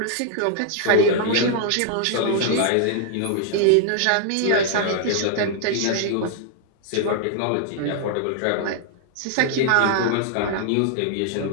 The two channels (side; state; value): both; different; correlation -0.01